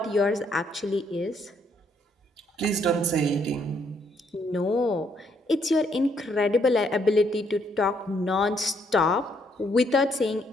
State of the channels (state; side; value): normal; both; correlation 0.71